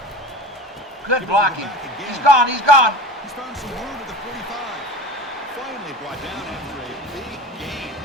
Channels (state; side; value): normal; both; correlation 0.34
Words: Good blocking. He's gone. He's gone. He's found some room at the 45. Finally brought down after a big gain.